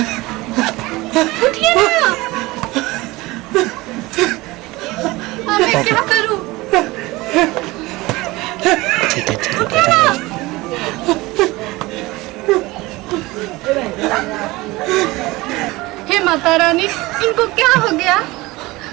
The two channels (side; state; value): left; quieter; 20.9 dB